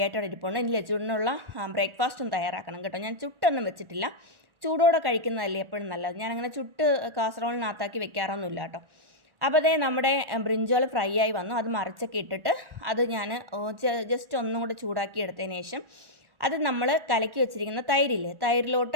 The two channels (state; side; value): late; left; 1.4 ms